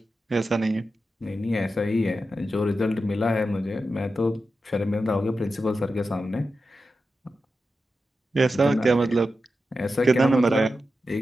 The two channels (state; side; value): normal; both; correlation 0.91